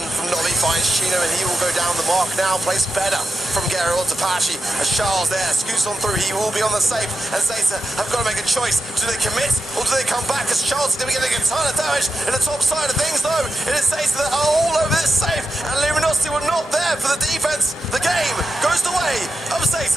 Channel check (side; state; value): both; normal; correlation 0.89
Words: from Nobby, finds Chino, and he will go down the mark now. Plays better from Gary onto Pachi. As Charles there scoots on through, he will be on the safe. And Zeta have got to make a choice. Do they commit or do they come back? As Charles is going to be getting a ton of damage in the top side of things, though. It is Zeta that are all over this safe, and Luminosity were not there for the defense. The game goes the way of